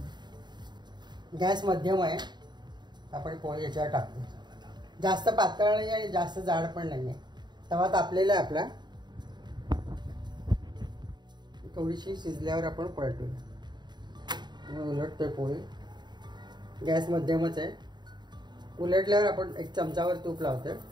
गॅस मध्यम आहे. आपण पोळी याच्यावर टाकतो. जास्त पातळ नाही आणि जास्त जाड पण नाही आहे. तवा तापलेला आहे आपला. थोडीशी शिजल्यावर आपण पलटूया. उलटतोय पोळी. गॅस मध्यमच आहे. उलटल्यावर आपण एक चमचावर तूप लावतोय.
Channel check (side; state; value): left; late; 0.21 ms